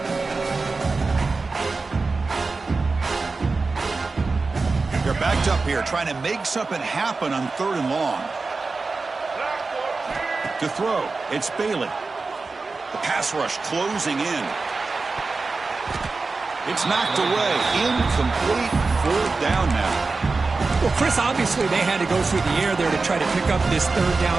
They're backed up here, trying to make something happen on 3rd and long. To throw, it's Bailey. The pass rush closing in. It's knocked away. Incomplete. 4th down now. Well, Chris, obviously they had to go through the air there to try to pick up this 3rd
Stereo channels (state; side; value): quieter; left; 3.9 dB